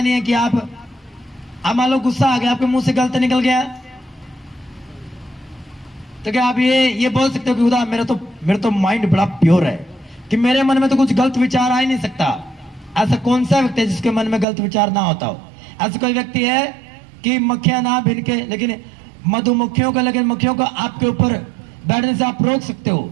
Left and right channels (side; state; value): left; drops out; at 14.5 s